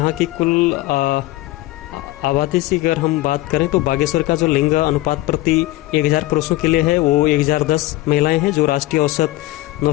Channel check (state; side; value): quieter; right; 17.8 dB